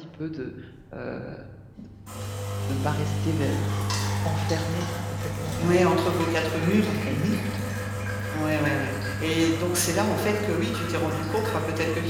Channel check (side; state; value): both; identical; correlation 1.00